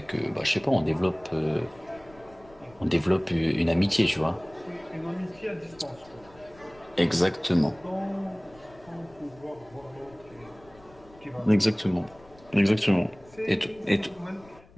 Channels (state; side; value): noise; left; rumble, 25 dB below the sound